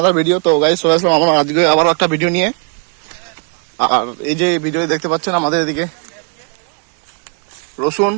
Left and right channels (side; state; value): left; quieter; 38.7 dB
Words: video. তো গাইস চলে আসলাম আমরা আজকে আবারও একটা ভিডিও নিয়ে। আর এই যে ভিডিও দেখতে পাচ্ছেন আমাদের এদিকে রসুন,